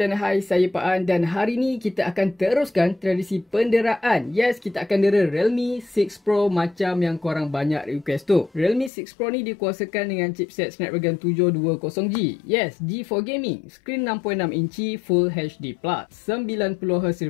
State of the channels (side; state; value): right; drops out; at 8.9 s